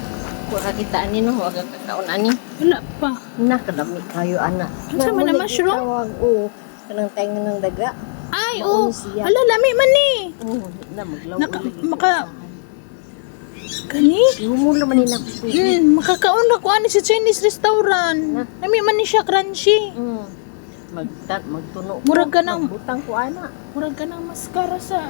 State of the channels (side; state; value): right; silent; 64 dB below the other